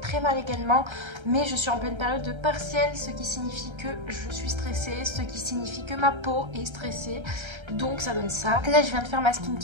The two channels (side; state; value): left; late; 1.3 ms